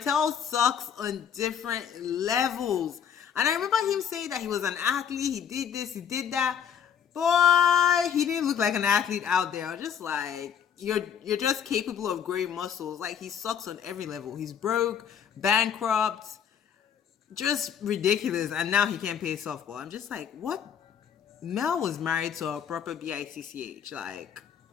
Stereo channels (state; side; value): quieter; right; 8.2 dB